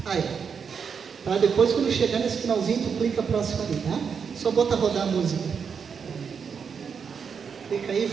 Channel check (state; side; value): quieter; left; 6.4 dB